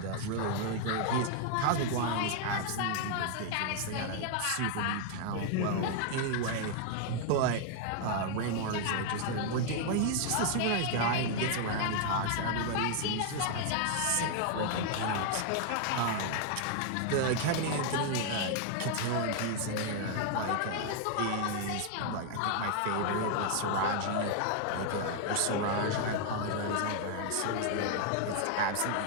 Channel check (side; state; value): both; different; correlation 0.00